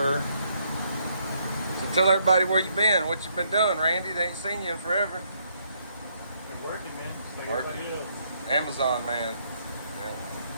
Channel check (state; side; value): inverted; both; correlation -0.72